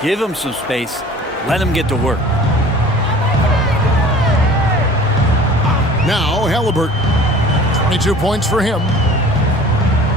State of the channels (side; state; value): both; normal; correlation 0.46